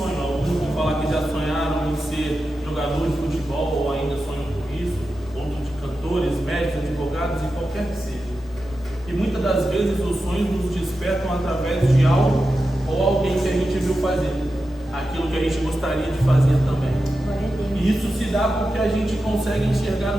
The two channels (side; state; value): both; normal; correlation 0.91